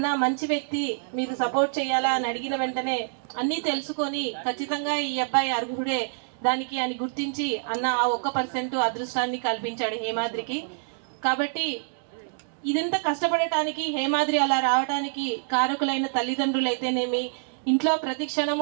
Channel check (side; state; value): left; silent; digital silence